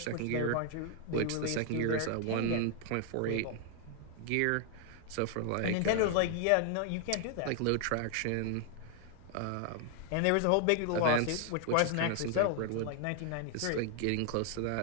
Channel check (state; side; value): different; both; correlation 0.00